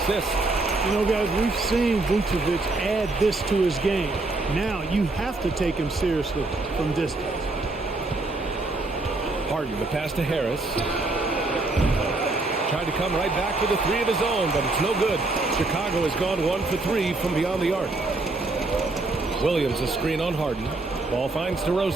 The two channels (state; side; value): quieter; left; 3.2 dB